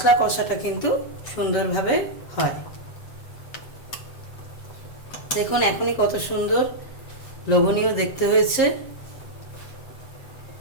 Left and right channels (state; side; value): late; right; 7.9 ms